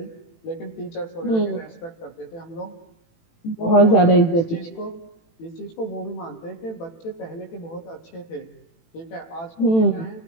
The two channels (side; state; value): right; late; 18 ms